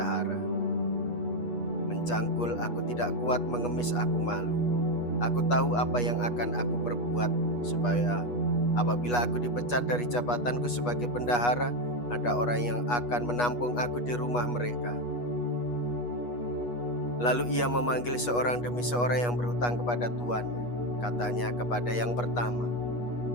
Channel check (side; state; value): right; late; 8.3 ms